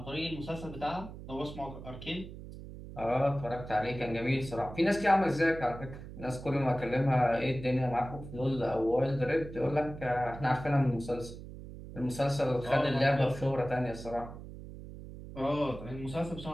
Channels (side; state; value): right; noise; hum, 13 dB below the sound